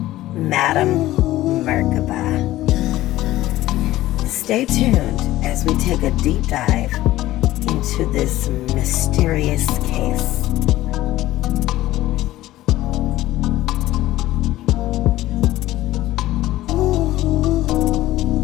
Madam Merkaba. Stay tuned as we take a deep dive into this mysterious case.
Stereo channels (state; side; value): quieter; right; 15.6 dB